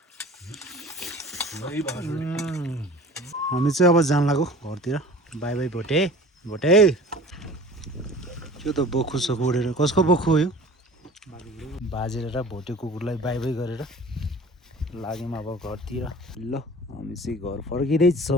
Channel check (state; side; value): normal; both; correlation 0.43